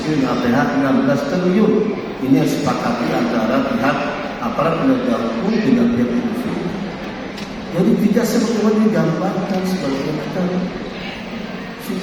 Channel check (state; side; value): identical; both; correlation 1.00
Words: Krim APH 16 triliun. Ini yang sepakati antara pihak aparat penegak hukum dengan pihak polisi. Jadi tidak sebagaimana digambarkan sebagai kita,